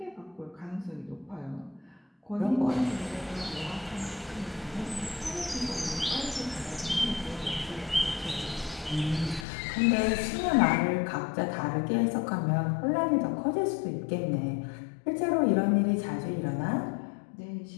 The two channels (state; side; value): drops out; right; at 9.5 s